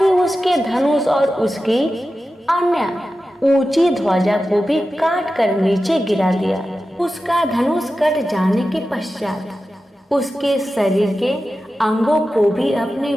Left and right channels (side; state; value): both; normal; correlation 0.93